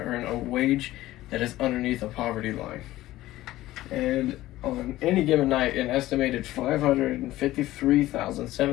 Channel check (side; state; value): right; quieter; 16.0 dB